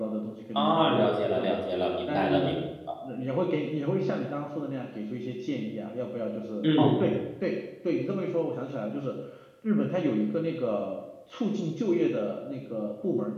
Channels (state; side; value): identical; both; correlation 1.00